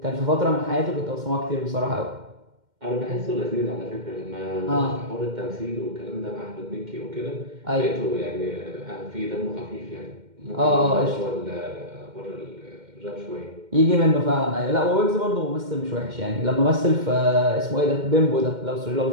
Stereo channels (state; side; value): late; left; 2.1 ms